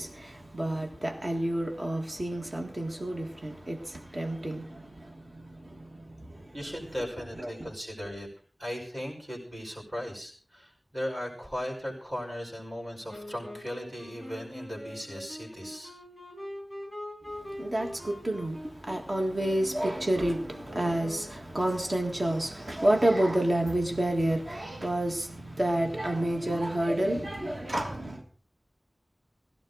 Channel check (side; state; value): both; normal; correlation 0.96